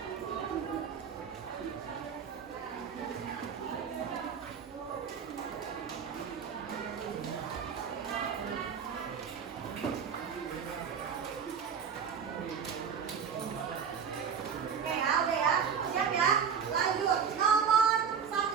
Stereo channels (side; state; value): left; quieter; 7.0 dB